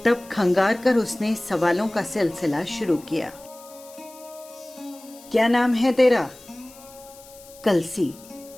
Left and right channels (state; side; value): noise; left; hiss, 21 dB below the sound